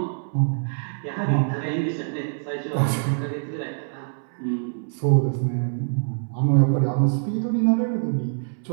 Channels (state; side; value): silent; left; 62 dB below the other